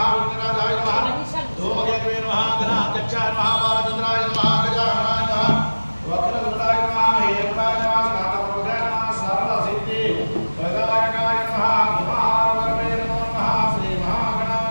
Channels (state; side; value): inverted; both; correlation -1.00